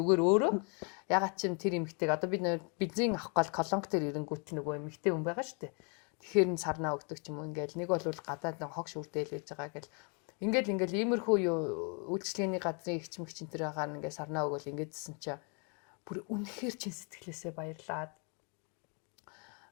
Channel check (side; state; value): right; quieter; 36.3 dB